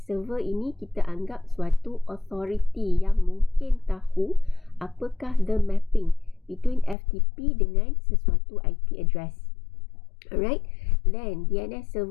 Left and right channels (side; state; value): right; drops out; at 7.0 s